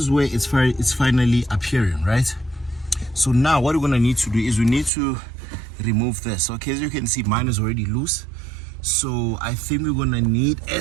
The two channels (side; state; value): left; drops out; at 4.9 s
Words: where it's finally appearing, right? So now what we're gonna need to do is we need to remove this. Okay, as you can see, mine is already loose. So I think we're gonna need a